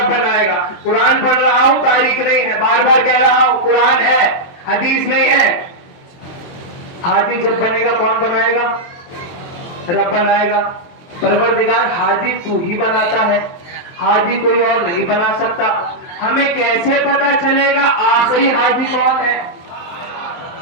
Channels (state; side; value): late; right; 23 ms